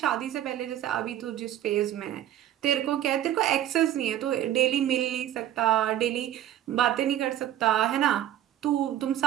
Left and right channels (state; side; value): quieter; left; 12.0 dB